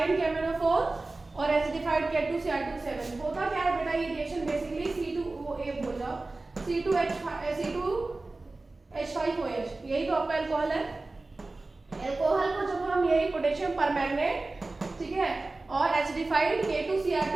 KMnO4 और एसिडिफाइड K2Cr2O7। होता क्या है बेटा, ये रिएक्शन बेसिकली C2OA बोल जाओ, C2H5OH, यही तो आपका अल्कोहल है। अल्कोहल को जब हम यही पोटेशियम परमैंगनेट, ठीक है, और एसिडिफाइड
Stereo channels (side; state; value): left; quieter; 3.2 dB